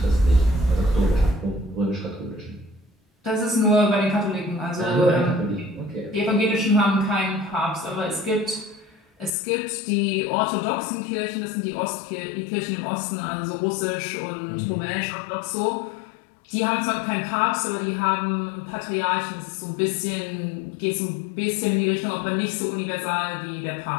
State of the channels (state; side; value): drops out; right; at 9.3 s